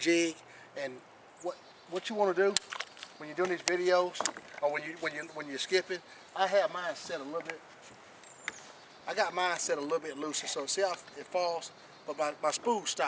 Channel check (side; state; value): both; identical; correlation 1.00